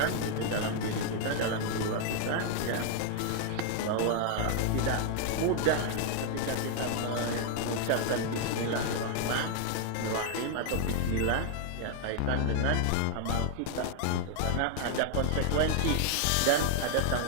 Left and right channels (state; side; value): different; both; correlation 0.00